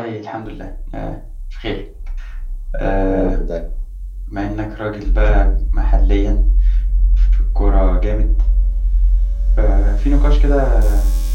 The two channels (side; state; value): both; identical; correlation 1.00